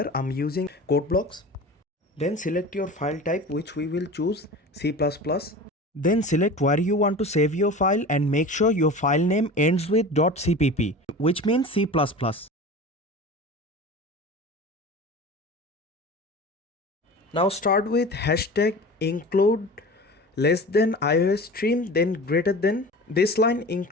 I'm using code blocks. Then select your file type, which we will choose C++. Then select where you want to save your file and make sure your file name ends with .cpp, which means C++. Now start with hashtag include less than iOS stream, then greater than. This line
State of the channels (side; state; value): both; normal; correlation 0.35